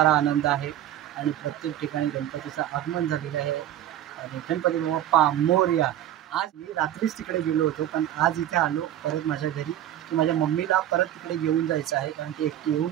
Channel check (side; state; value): left; quieter; 12.0 dB